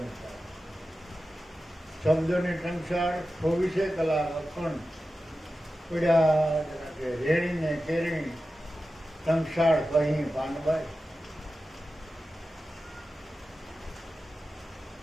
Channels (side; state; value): both; normal; correlation 0.93